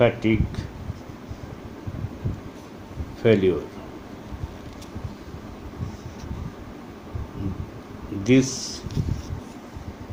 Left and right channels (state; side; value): identical; both; correlation 1.00